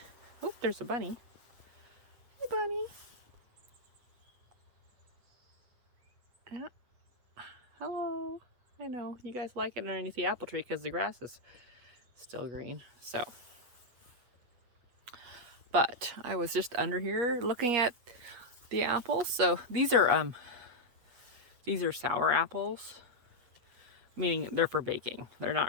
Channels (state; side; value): late; left; 8.2 ms